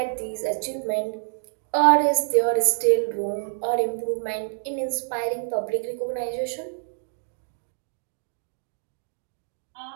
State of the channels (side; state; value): left; silent; digital silence